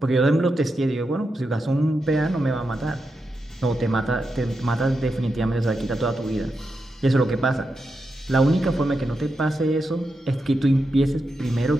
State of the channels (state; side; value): normal; both; correlation 0.87